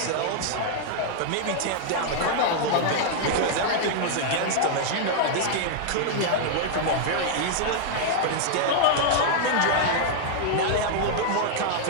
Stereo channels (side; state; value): both; different; correlation -0.01